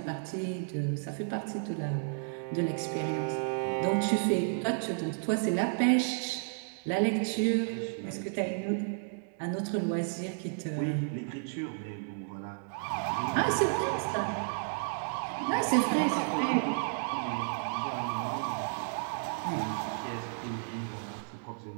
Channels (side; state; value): left; silent; digital silence